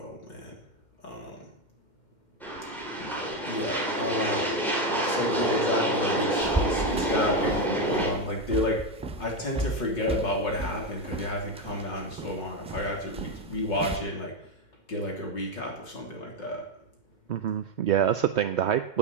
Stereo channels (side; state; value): right; late; 2.1 ms